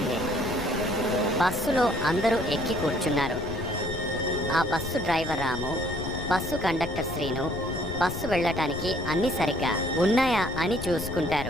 బస్సులో అందరూ ఎక్కి కూర్చున్నారు. ఆ బస్సు డ్రైవర్ రాము, బస్సు కండక్టర్ శ్రీను బస్సు వెళ్ళటానికి అన్నీ సరిగ్గా ఉన్నాయా అని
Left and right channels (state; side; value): noise; left; rumble, 10 dB below the sound